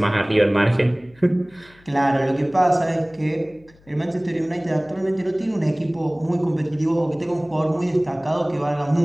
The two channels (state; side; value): noise; left; hum, 28 dB below the sound